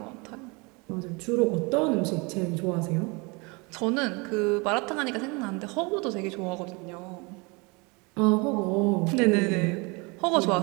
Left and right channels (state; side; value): quieter; left; 28.4 dB